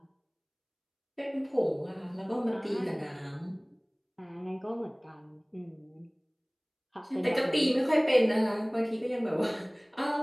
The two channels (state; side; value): identical; both; correlation 1.00